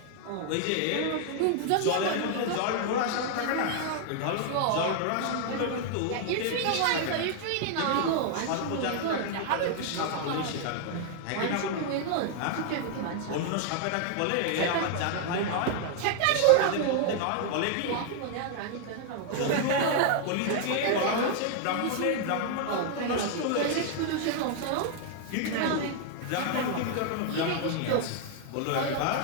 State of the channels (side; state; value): both; different; correlation 0.00